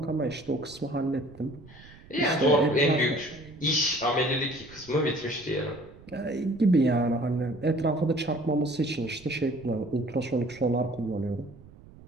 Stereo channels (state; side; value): noise; right; rumble, 21 dB below the sound